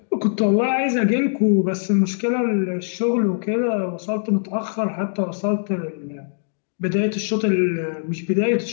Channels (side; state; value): right; silent; digital silence